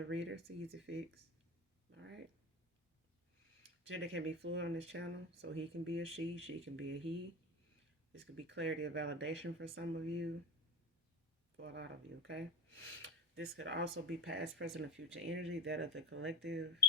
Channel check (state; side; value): normal; both; correlation 0.27